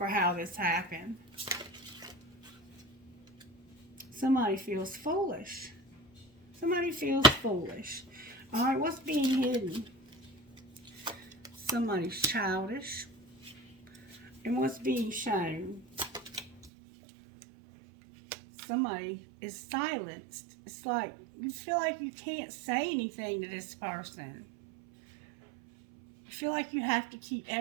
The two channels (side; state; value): left; drops out; at 16.7 s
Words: how this happened. Somebody feels foolish. Somebody feels foolish. All right, what's being hidden? Somebody's childish. And what's being shown? Somebody is silenced. It's like you feel like you can't say anything to this person. You feel like you have to keep